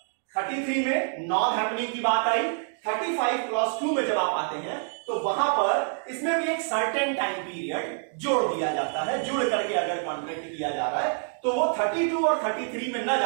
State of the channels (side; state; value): left; silent; 58 dB below the other